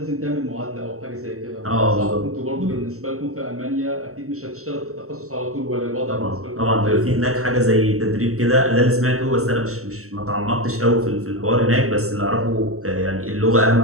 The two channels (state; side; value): late; left; 0.64 ms